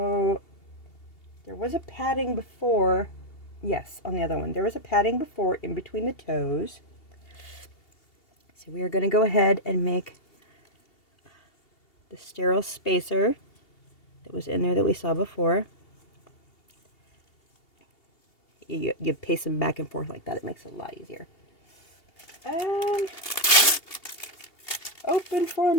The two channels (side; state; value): right; late; 2.8 ms